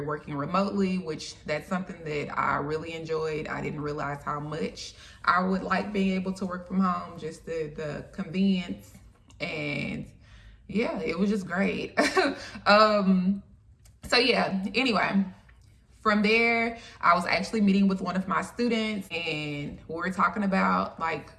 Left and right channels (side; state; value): both; identical; correlation 1.00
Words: working remotely, which that's something that I really enjoyed. I didn't realize how much I would like being able to work from home, just the convenience, and it was just great. Anyway, from there, I was actually meeting with one of my students, and we were talking about like